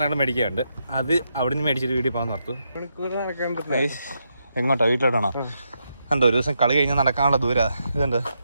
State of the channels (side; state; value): both; inverted; correlation -0.82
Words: മേടിക്കാറുണ്ട്. അത് അവിടെ നിന്ന് മേടിച്ചിട്ട് വീട്ടിൽ പോകാൻ ഓർത്തു. എങ്ങോട്ടാ? വീട്ടിലോട്ടാണോ? കണ്ടോ, ഒരു ദിവസം കളി കഴിഞ്ഞാൽ നടക്കാനുള്ള ദൂരം ഇതുണ്ട്.